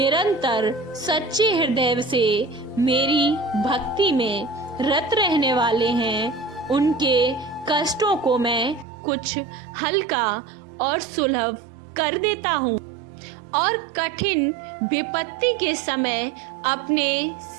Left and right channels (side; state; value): left; drops out; at 8.8 s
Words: सच्चे हृदय से मेरी भक्ति में रत रहने वाले हैं, उनके कष्टों को मैं कुछ हल्का और सुलभ कर देता हूँ और कठिन विपत्ति के समय अपने